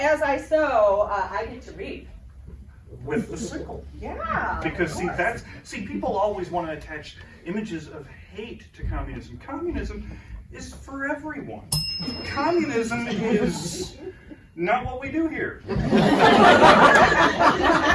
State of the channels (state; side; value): identical; both; correlation 1.00